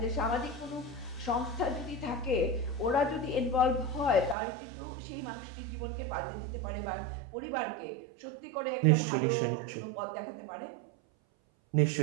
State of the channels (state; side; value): drops out; left; at 4.4 s